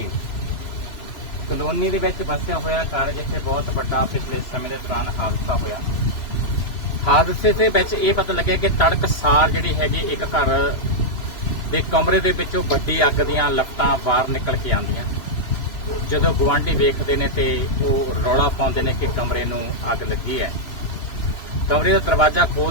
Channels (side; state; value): right; late; 3.0 ms